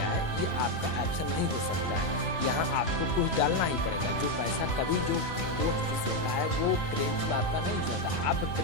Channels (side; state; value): right; late; 3.0 ms